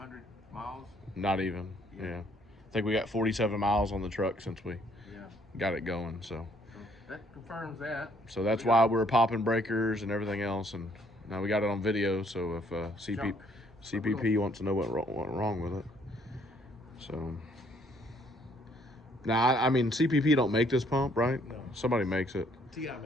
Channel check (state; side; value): normal; both; correlation 0.65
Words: miles. Not even. Yeah. I think we got 47 miles on the truck since we got it going. So that confirms that. So that's why we're popping breakers and everything else, and now we got it on video. So if CPP wants to know what went wrong with it, so now I mean CPP don't make this pump, right? No. Somebody makes it. TI